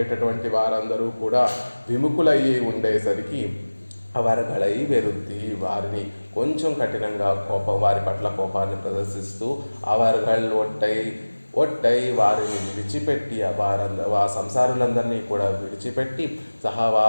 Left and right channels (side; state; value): both; inverted; correlation -1.00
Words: వారందరూ కూడా విముఖులయ్యి ఉండేసరికి అవర్గళై వెరుద్ది, వారిని కొంచెం కఠినంగా వారి పట్ల కోపాన్ని ప్రదర్శిస్తూ అవర్గళ్ ఒట్టై వారిని విడిచిపెట్టి ఆ సంసారులందరినీ కూడా విడిచిపెట్టి